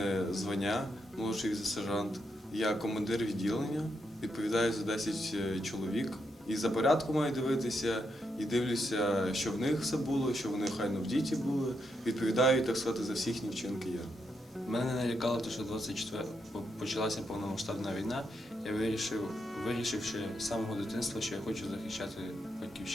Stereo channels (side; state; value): both; normal; correlation 0.81